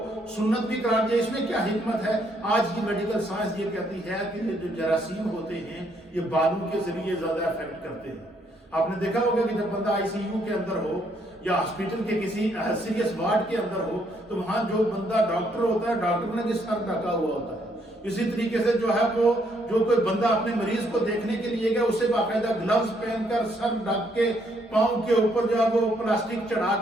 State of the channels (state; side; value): normal; both; correlation 0.71